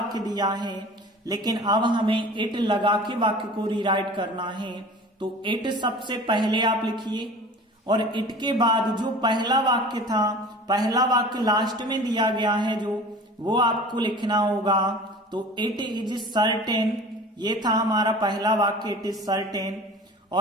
दिया है, लेकिन अब हमें इट लगा के वाक्य को रीराइट करना है। तो इट सबसे पहले आप लिखिए, और इट के बाद जो पहला वाक्य था, पहला वाक्य लास्ट में दिया गया है जो, वो आपको लिखना होगा। तो इट इज सर्टेन, ये था हमारा पहला वाक्य, इट इज सर्टेन।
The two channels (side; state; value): both; normal; correlation 0.41